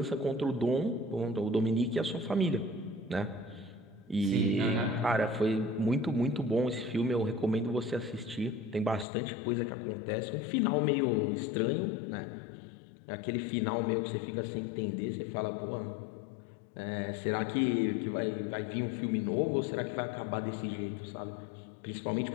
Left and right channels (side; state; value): right; drops out; at 9.1 s